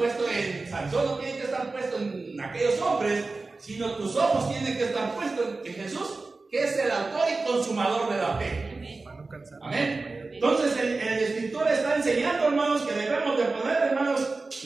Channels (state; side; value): quieter; left; 3.6 dB